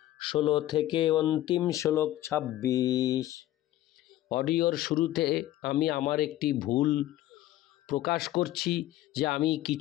16 থেকে অন্তিম শ্লোক 26। অডিওর শুরুতে আমি আমার একটি ভুল প্রকাশ করছি যে আমি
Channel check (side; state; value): right; quieter; 14.5 dB